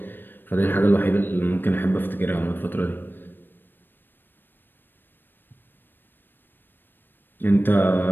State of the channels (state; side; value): late; right; 0.095 ms